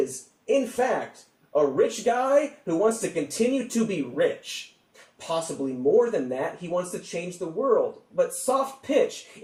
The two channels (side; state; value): both; identical; correlation 1.00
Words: in fact, a rich guy who wants to continue to be rich. Possibly more than that, he wants to change the world. But soft pitch,